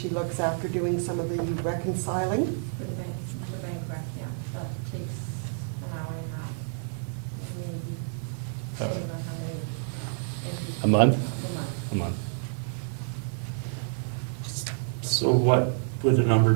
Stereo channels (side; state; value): left; silent; 59 dB below the other